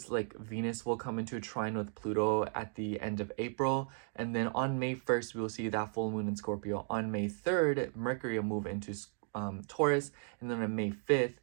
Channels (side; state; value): left; silent; 54 dB below the other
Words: like Venus will come into a trine with Pluto at the end of April. And then on May 1st, we'll see that full moon in Scorpio. On May 3rd, Mercury will move into Taurus. And then on May 5th,